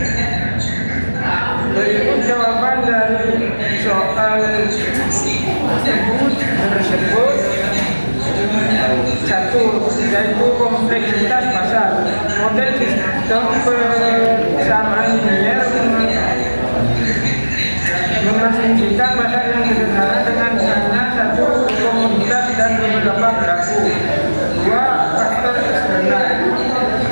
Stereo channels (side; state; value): both; inverted; correlation -1.00